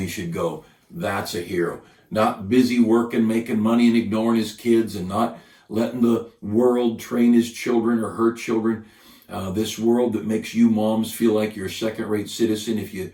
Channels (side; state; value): both; identical; correlation 1.00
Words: should go. That's a hero. Not busy working, making money, and ignoring his kids, and not letting the world train his children or her children. This world that makes you moms feel like you're a second-rate citizen